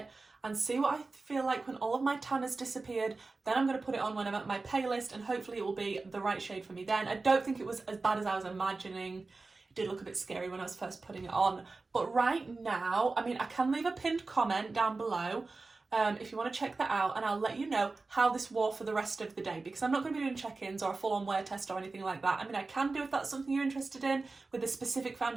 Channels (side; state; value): left; quieter; 3.7 dB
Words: and see what I feel like when all of my tan has disappeared. Then I'm going to put it on when I'm at my palest, and hopefully it will be the right shade for me then. I don't think it was as bad as I was imagining. It did look a bit scary when I was first putting it on. But right now, I mean, I can leave a pinned comment down below if you want to check that out, and I'll let you know how this wore for the rest of the day, because I'm not going to be doing check-ins or a full-on wear test or anything like that. I mean, I can do if that's something you're interested in with a specific